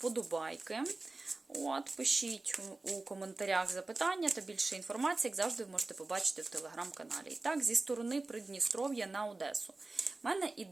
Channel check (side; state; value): left; quieter; 3.3 dB